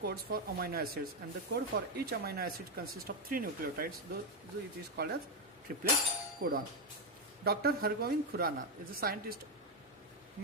for amino acids, and the code for each amino acid consists of 3 nucleotides, so it is called as triplet codon. Dr. Hargobind Khurana is a scientist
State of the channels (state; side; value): normal; both; correlation 0.06